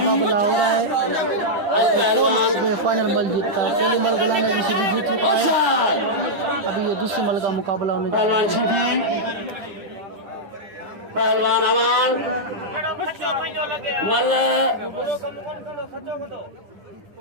हो रहा है। फाइनल मल जीतता है। पहली मल गुलाम रशीदी जीत चुका है। अभी ये दूसरी मल का मुकाबला होने जा रहा है। पहलवान अवान मल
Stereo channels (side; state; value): left; late; 10 ms